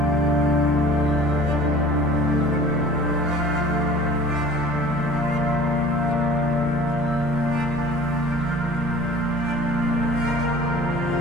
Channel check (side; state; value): right; noise; rumble, 13 dB below the sound